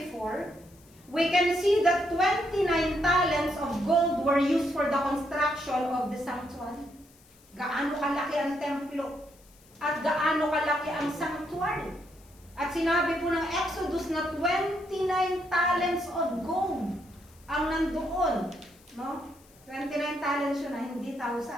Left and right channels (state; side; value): noise; left; hiss, 28 dB below the sound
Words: we can see that 29 talents of gold were used for the construction of the sanctuary. Gaano kalaki ang templo at gaano kalaki ang sanctuary. At sinabi po ng Exodus na 29 talents of gold ang nandoon. No? 29 talents yun na, hindi